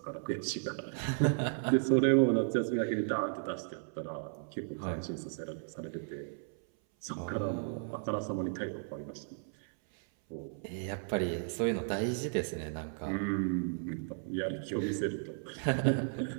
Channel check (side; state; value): left; silent; 55 dB below the other